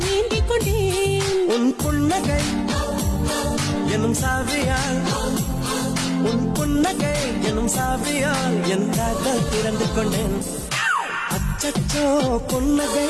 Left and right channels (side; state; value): both; identical; correlation 1.00